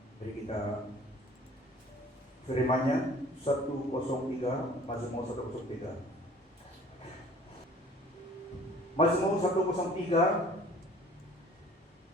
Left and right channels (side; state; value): both; normal; correlation 0.51